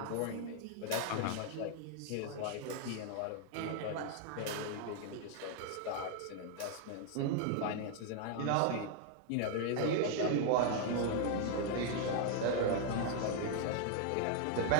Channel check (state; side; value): different; both; correlation 0.00